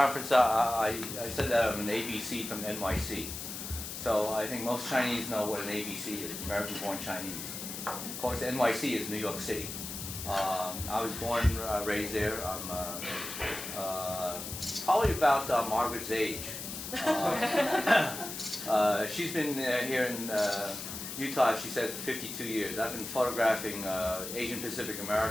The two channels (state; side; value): noise; left; hiss, 7 dB below the sound